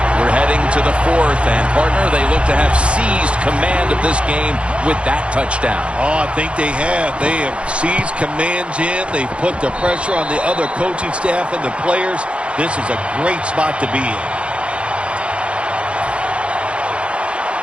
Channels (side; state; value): left; late; 0.059 ms